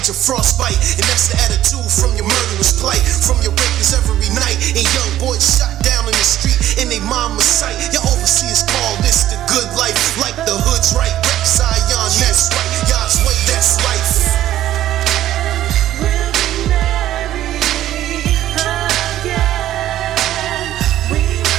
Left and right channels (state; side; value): quieter; left; 12.9 dB